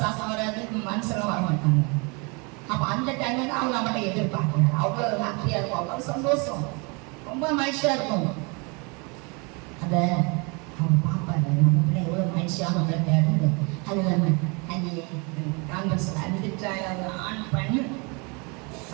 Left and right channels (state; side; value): quieter; left; 30.8 dB